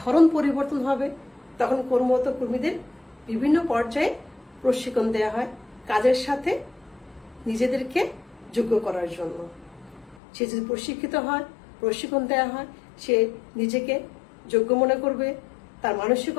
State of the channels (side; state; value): right; drops out; at 10.2 s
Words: ধরন পরিবর্তন হবে, তখন কর্মরত কর্মীদের বিভিন্ন পর্যায়ে প্রশিক্ষণ দেওয়া হয় কাজের সাথে নিজেদেরকে যোগ্য করার জন্য। সে যদি প্রশিক্ষিত হয়, প্রশিক্ষণ দেওয়া হয়, সে নিজেকে যোগ্য মনে করবে, তার